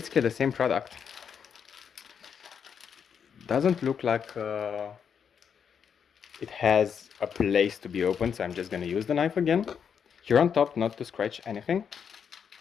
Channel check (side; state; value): right; quieter; 7.3 dB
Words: the same product. Doesn't look like it has a place to be opened, so I'm just going to use the knife again. Here on top, not to scratch anything.